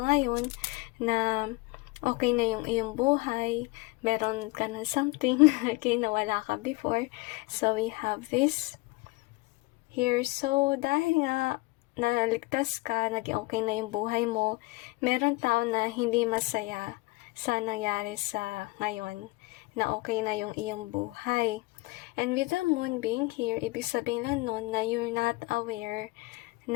na okay na yung iyong buhay, meron ka na something, okay, na wala ka before. So we have this here. So dahil nga naligtas ka, naging okay na yung buhay mo, meron tao na hindi masaya sa nangyari sa ngayon, na okay na yung iyong buhay. And with the moon being here, ibig sabihin lang nun na you're not aware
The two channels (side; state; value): right; quieter; 23.2 dB